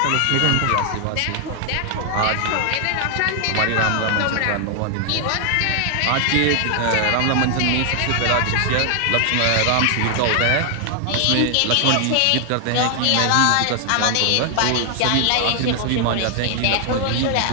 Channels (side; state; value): both; different; correlation 0.00